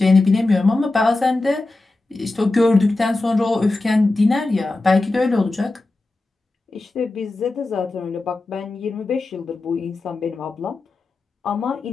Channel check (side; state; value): right; quieter; 3.1 dB